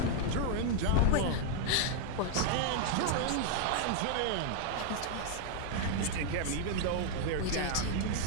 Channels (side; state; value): both; different; correlation 0.00